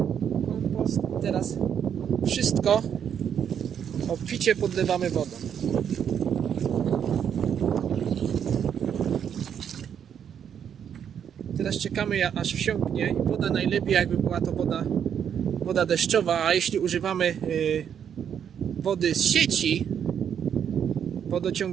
Teraz wszystko obficie podlewamy wodą. Teraz czekamy, aż wsiąknie. Woda najlepiej, jakby była to woda deszczowa, a jeśli używamy wody z sieci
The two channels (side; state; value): left; quieter; 8.4 dB